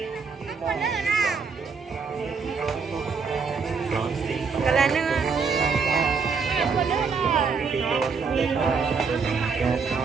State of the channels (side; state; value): left; quieter; 5.3 dB